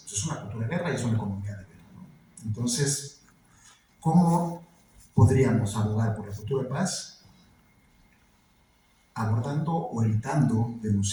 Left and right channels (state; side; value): identical; both; correlation 1.00